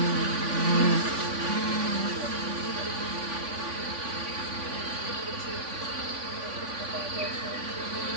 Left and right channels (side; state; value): left; late; 3.5 ms